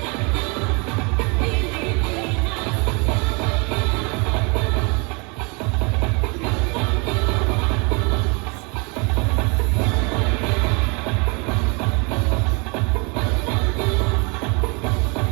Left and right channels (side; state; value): left; quieter; 31.1 dB